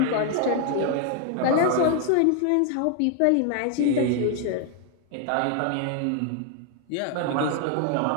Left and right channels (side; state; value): both; different; correlation 0.00